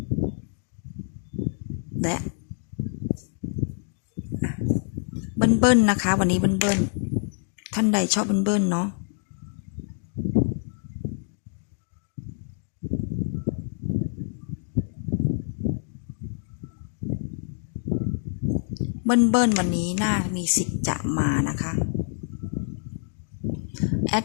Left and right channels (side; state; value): right; silent; digital silence